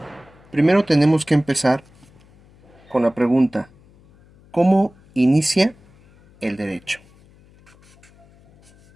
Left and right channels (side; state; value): left; noise; hum, 28 dB below the sound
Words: Primero tenemos que empezar con la pregunta: ¿cómo inicia el derecho?